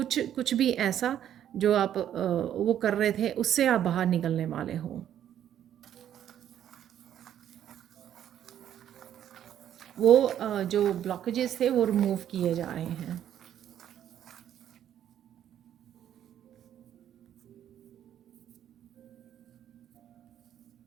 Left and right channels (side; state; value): left; quieter; 10.5 dB